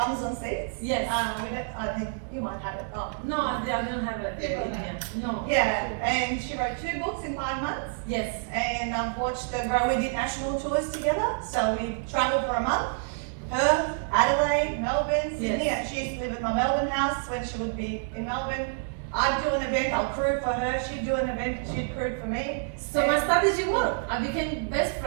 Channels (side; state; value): left; silent; digital silence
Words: on Seats. Yes. I think you might have it. Oh. No, I don't have it in here. No. Yeah, and she wrote 2 books in 5 months. Yes. And watched her grow. We did national tours together. So we travelled for a month. Perth, Adelaide, Melbourne, Sydney. Yes. She used to live at my Melbourne house when she would be in Melbourne. I'd do an event, I'll crew for her. She'd do an event, she'd crew for me. So my strategy worked. I became best